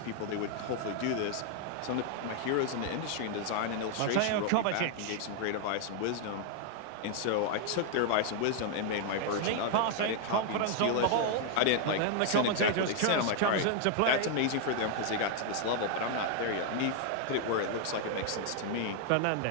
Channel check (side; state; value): both; different; correlation 0.00